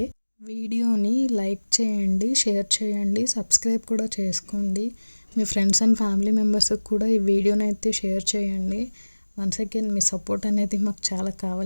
వీడియోని లైక్ చేయండి, షేర్ చేయండి, సబ్స్క్రైబ్ కూడా చేసుకోండి. మీ ఫ్రెండ్స్ అండ్ ఫ్యామిలీ మెంబర్స్కి కూడా ఈ వీడియోని అయితే షేర్ చేయండి. వన్స్ అగైన్ మీ సపోర్ట్ అనేది మాకు చాలా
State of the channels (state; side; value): inverted; both; correlation -1.00